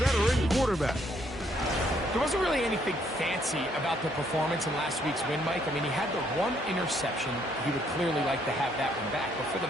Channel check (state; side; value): normal; both; correlation 0.69